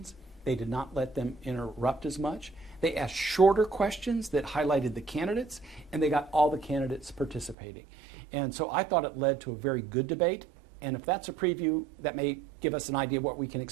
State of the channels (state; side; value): drops out; left; at 7.6 s